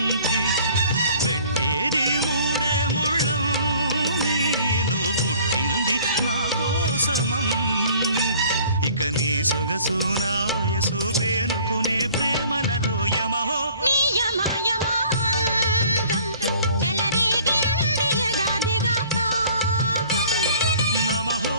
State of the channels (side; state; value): both; inverted; correlation -0.52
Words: పెట్టేది మూడే ముళ్ళం నేను పుట్టింది నా కోసమమ్మి ఇక నీ సొగసు నా వయసు పేనుకునే ప్రేమలలో యమహో నమహో